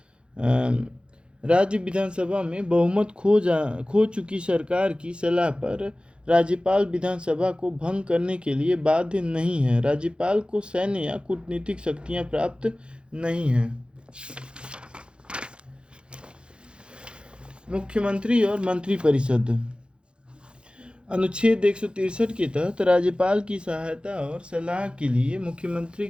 राज्य विधानसभा में बहुमत खो चुकी सरकार की सलाह पर राज्यपाल विधानसभा को भंग करने के लिए बाध्य नहीं है। राज्यपाल को सैन्य या कूटनीतिक शक्तियां प्राप्त नहीं हैं। मुख्यमंत्री और मंत्रिपरिषद। अनुच्छेद 163 के तहत राज्यपाल की सहायता और सलाह के लिए मुख्यमंत्री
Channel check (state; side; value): late; left; 0.054 ms